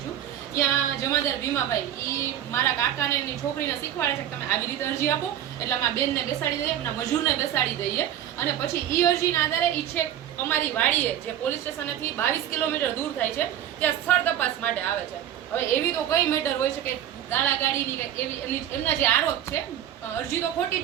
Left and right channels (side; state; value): left; quieter; 11.0 dB